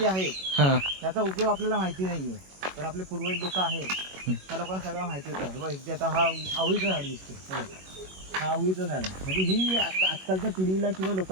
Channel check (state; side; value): late; left; 21 ms